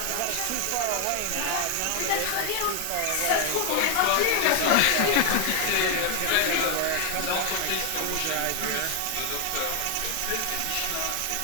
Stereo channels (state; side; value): different; both; correlation 0.00